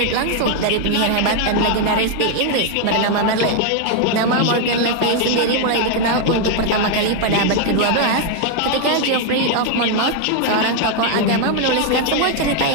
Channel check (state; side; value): different; both; correlation 0.00